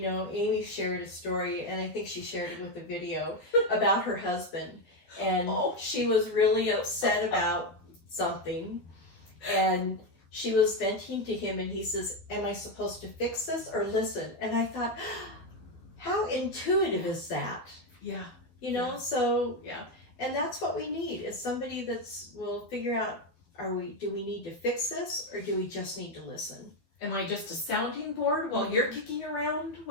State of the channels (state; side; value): late; right; 12 ms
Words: know, Amy shared a story, and I think she shared it with a video about her husband. And she was really upset about something. And she was venting to him, and he says, am I supposed to fix this or listen? And I thought, how intuitive is that? Yeah. You know, Yeah. So, yeah. And that's what we need, is somebody will figure out, do we need to fix this, or do we just need to listen? Am I just a sounding board while you're kicking around